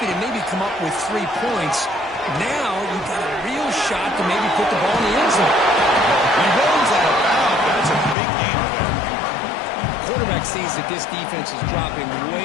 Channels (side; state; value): right; drops out; at 8.2 s